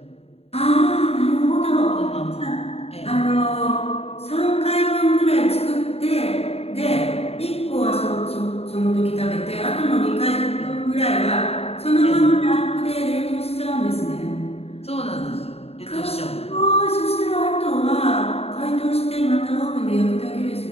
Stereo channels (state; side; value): late; right; 0.29 ms